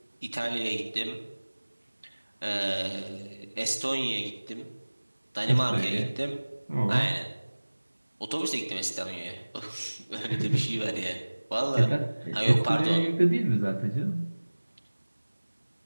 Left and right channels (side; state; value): both; inverted; correlation -1.00